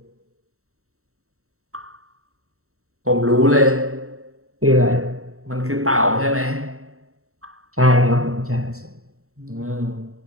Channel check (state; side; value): late; left; 0.63 ms